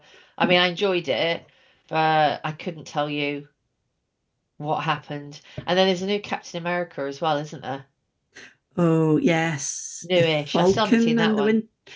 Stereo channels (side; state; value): both; identical; correlation 1.00